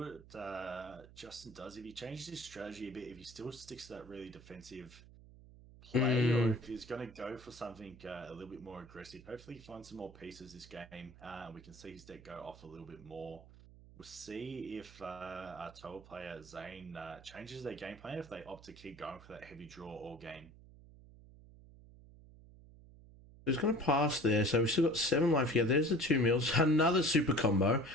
Justin does. If he changes his strategy a bit, if he still sticks to that really defensive play, or if he's going to go for something a little bit more aggressive. Hopefully he finds some more pieces this game. We can see his deck go off a little bit more. We'll see if our Towa player Zane changes their game plan, if they opt to keep going for that heavy draw all game. He's going to pass there, so we've still got 7 life here. There's the 2 mills. Another super combo.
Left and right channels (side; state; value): right; noise; hum, 20 dB below the sound